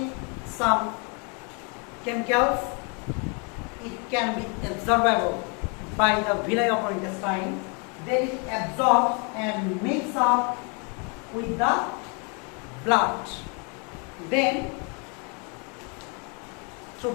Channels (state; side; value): quieter; right; 34.8 dB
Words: some chemicals, it can be absorbable by the villi of our intestine. Then it absorbs and mix up with the blood. Then through